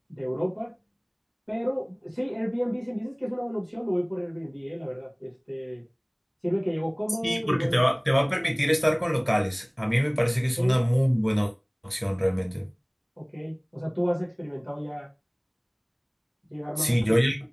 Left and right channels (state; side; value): identical; both; correlation 1.00